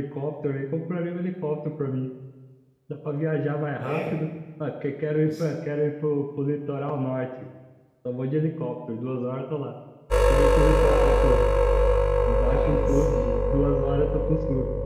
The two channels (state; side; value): identical; both; correlation 1.00